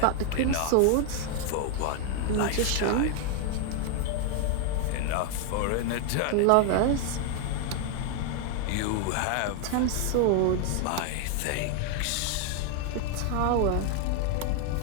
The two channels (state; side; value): different; both; correlation 0.00